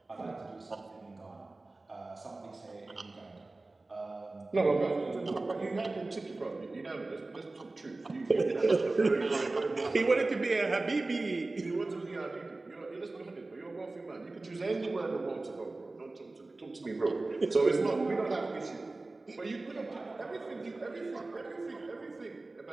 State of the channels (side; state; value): left; quieter; 3.2 dB